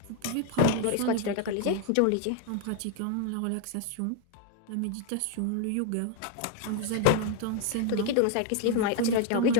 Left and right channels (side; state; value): both; different; correlation 0.00